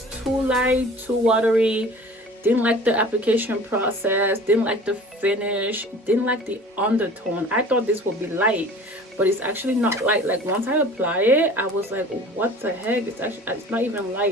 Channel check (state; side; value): normal; both; correlation 0.44